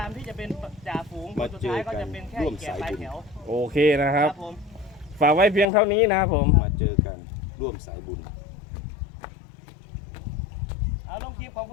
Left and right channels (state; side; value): drops out; right; at 5.7 s